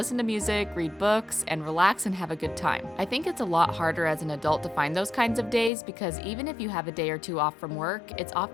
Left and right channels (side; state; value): right; drops out; at 5.7 s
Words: to music, read books, and relax and have a good time. I think it's a lot harder as an adult to find those kinds of days because even if you have a day or two off from work, it's